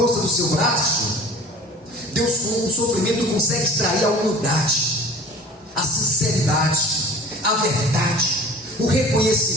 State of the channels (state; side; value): normal; both; correlation 0.43